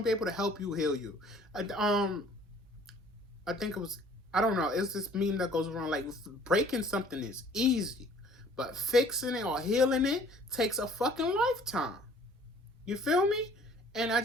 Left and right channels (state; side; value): normal; both; correlation 0.54